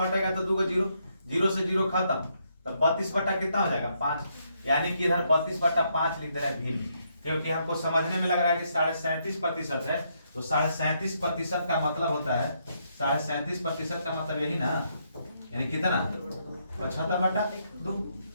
हटेगा तो 2 को 0, 0 से 0 खत्म, तो 32 बटा कितना हो जाएगा 5, यानी कि इधर 32 बटा 5 लिख दे रहा है भिन्न, क्योंकि हमको समझने में लग रहा है कि 37.5% है, तो 37.5% का मतलब होता है 37.5% का मतलब यही ना, यानी कितना 75 बटा 2,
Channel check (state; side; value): inverted; both; correlation -0.76